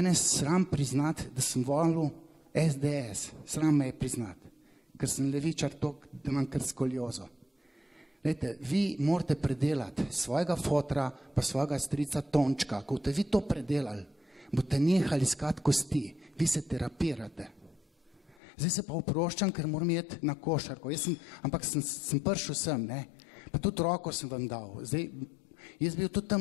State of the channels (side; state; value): right; drops out; at 18.4 s